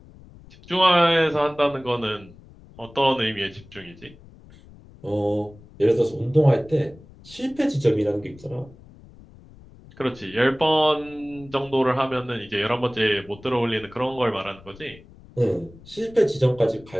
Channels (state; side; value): noise; left; rumble, 22 dB below the sound